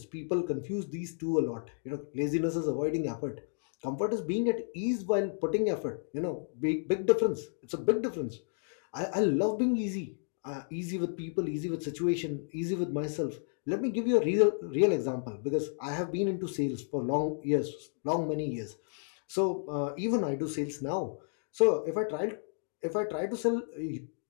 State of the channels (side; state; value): right; silent; digital silence